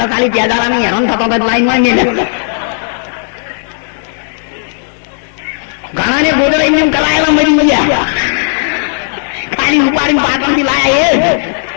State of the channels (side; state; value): right; silent; digital silence